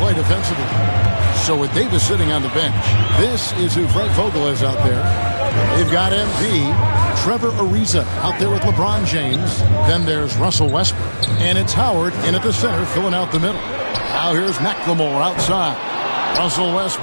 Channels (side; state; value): both; inverted; correlation -1.00